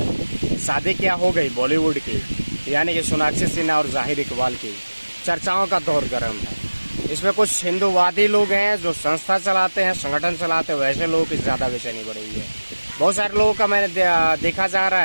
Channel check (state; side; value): inverted; both; correlation -1.00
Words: है। शादी क्या हो गई बॉलीवुड की, यानी कि सोनाक्षी सिन्हा और ज़ाहिर इकबाल की चर्चाओं का दौर गर्म है। इसमें कुछ हिंदूवादी लोग हैं जो संस्था चलाते हैं, संगठन चलाते हैं, वैसे लोगों की ज़्यादा बेचैनी बढ़ी हुई है। बहुत सारे लोगों का मैंने देखा जा रहा